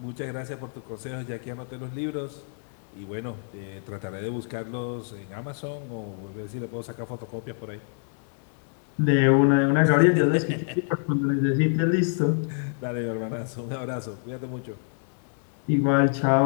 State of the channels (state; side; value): silent; right; digital silence